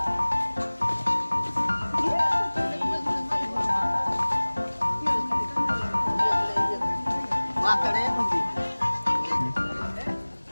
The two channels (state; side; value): inverted; both; correlation -1.00